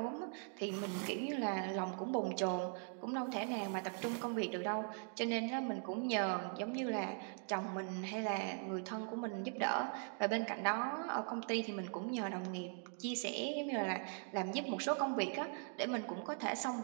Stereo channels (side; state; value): left; silent; 50 dB below the other